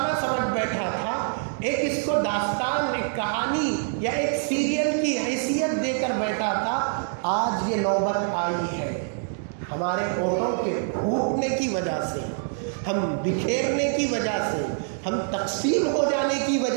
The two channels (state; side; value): silent; left; digital silence